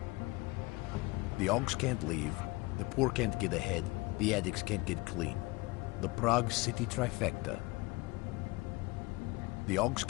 The Augs can't leave, the poor can't get ahead, the addicts can't get clean. The Prague City trifecta. The Augs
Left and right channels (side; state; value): right; quieter; 23.2 dB